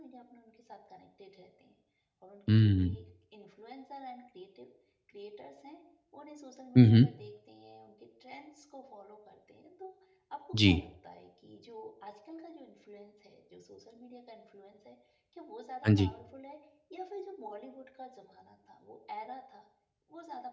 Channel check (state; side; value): identical; both; correlation 1.00